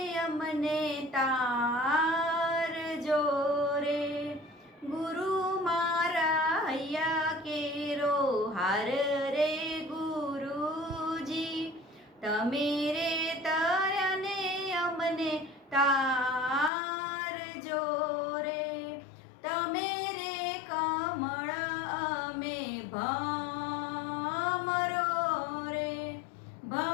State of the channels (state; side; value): drops out; right; at 16.7 s